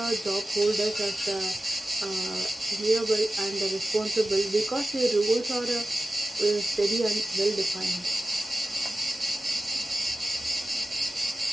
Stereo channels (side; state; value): both; normal; correlation 0.94